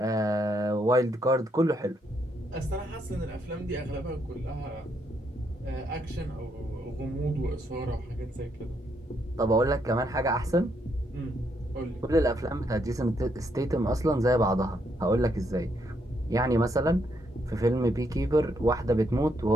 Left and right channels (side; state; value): both; normal; correlation 0.75